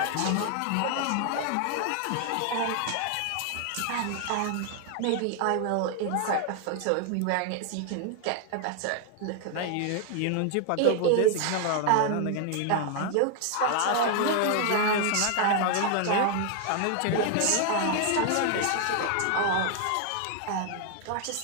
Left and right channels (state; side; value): different; both; correlation 0.00